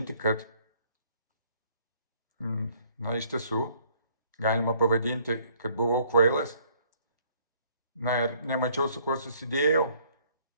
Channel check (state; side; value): inverted; both; correlation -0.62